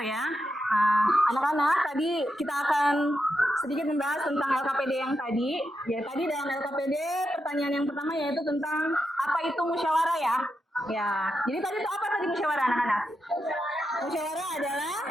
ya. Anak-anak, tadi kita akan sedikit membahas tentang LKPD yang tadi. Ya, tadi dalam LKPD pertanyaan yang pertama yaitu tentang apa itu musyawarah ya. Ya, jadi tadi itu apa tadi musyawarah anak-anak? Musyawarah adalah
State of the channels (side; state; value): both; normal; correlation 0.86